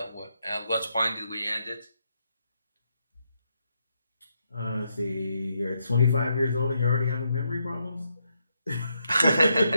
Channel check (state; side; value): inverted; both; correlation -0.80